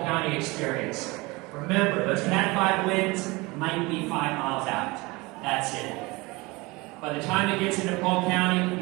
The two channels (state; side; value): quieter; left; 23.9 dB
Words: County experience? Remember, those Cat 5 winds might be 5 miles out. That's it. By the time it gets into Polk County,